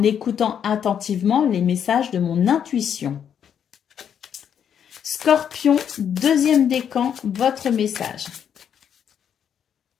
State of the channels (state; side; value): quieter; right; 8.5 dB